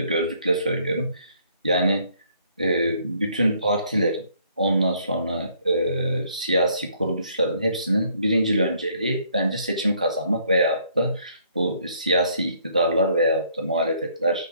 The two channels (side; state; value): both; inverted; correlation -0.65